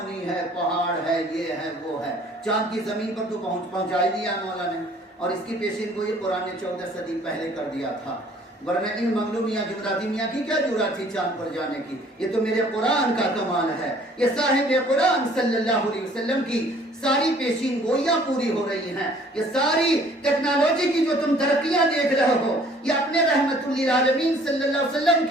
ہے، پہاڑ ہے، یہ ہے وہ ہے. چاند کی زمین پر تو پہنچا ہی دیا مولا نے. اور اس کی پیشین کو یہ قرآن نے 14 صدی پہلے کر دیا تھا، ورنہ ان منگلو میاں جمراتی میاں کی کیا جرات تھی چاند پر جانے کی؟ یہ تو میرے قرآن کا کمال ہے. یہ صاحب قرآن صلی اللہ علیہ وسلم کی ساری پیشین گوئیاں پوری ہو رہی ہیں. یہ ساری ٹیکنالوجی کی جو تم ترقیاں دیکھ رہے ہو، یہ اپنے رحمت للعالمین صلی اللہ علیہ وسلم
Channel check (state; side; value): normal; both; correlation 0.56